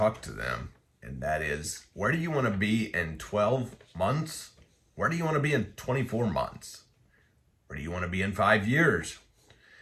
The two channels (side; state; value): both; identical; correlation 1.00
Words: to them, and that is, where do you want to be in 12 months? Where do you want to be in 24 months? Where do you want to be in 5 years?